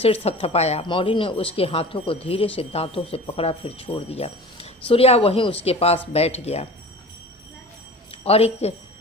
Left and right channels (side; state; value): both; normal; correlation 0.39